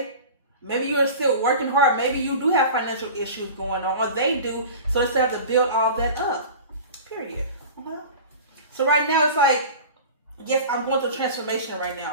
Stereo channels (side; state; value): both; inverted; correlation -0.36